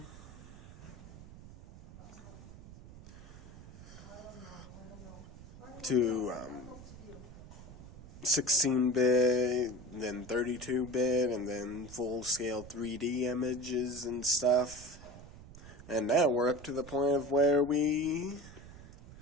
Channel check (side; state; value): right; noise; rumble, 17 dB below the sound